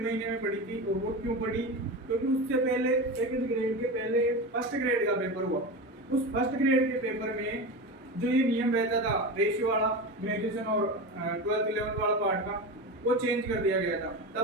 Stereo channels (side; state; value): both; normal; correlation 0.24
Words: महीने में पढ़ी थी। और वो क्यों पढ़ी? क्योंकि उससे पहले सेकंड ग्रेड के पहले फर्स्ट ग्रेड का पेपर हुआ। उस फर्स्ट ग्रेड के पेपर में जो ये नियम रहता था रेशियो वाला, ग्रेजुएशन और 12th 11th वाला पार्ट का, वो चेंज कर दिया गया था।